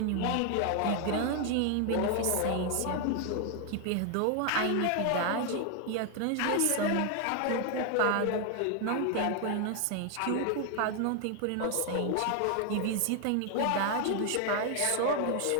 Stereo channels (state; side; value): different; both; correlation 0.00